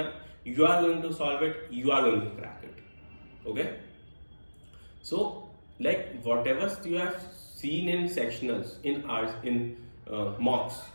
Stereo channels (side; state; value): both; inverted; correlation -1.00